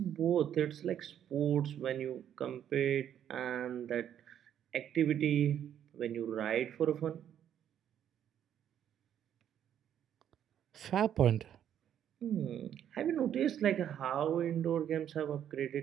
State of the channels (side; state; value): left; quieter; 9.9 dB